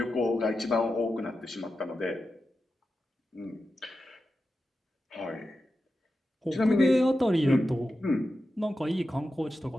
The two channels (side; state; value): both; normal; correlation 0.91